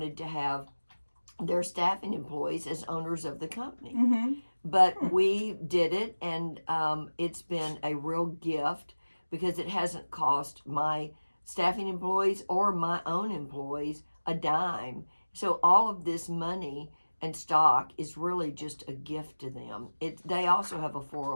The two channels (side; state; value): both; inverted; correlation -1.00